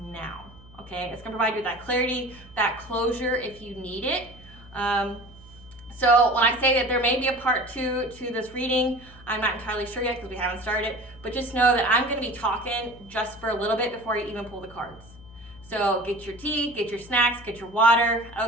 Okay, it's gonna provide you with that clarity, that closure if you need it. So when I say that there may be a part 2 to this reading, I'm not entirely sure yet because we haven't started, but just know that I'm gonna be talking just for a little bit before you even pull the cards. So get your tea, get your snacks, get your water,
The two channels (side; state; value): left; noise; hum, 21 dB below the sound